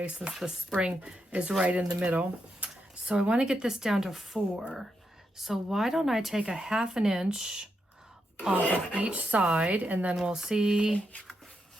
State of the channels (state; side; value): normal; both; correlation 0.83